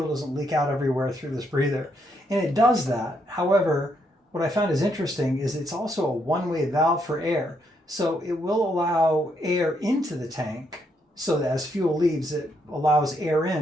doesn't leak out everywhere through this breather. And it does that. However, what I found is interesting is it's also a one-way valve for air. So it will allow air into the tank so that as fuel leaves, it allows air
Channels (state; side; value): normal; both; correlation 0.76